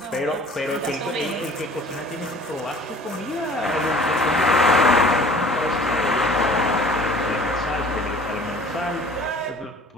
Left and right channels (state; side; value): normal; both; correlation 0.48